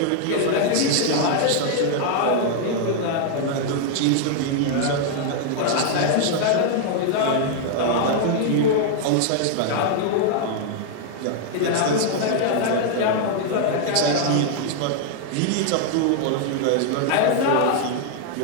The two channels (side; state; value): both; different; correlation 0.00